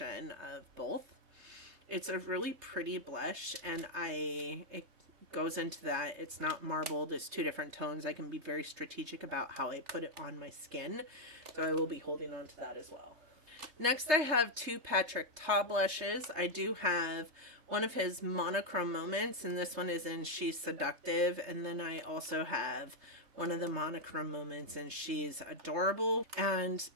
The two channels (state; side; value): late; left; 3.4 ms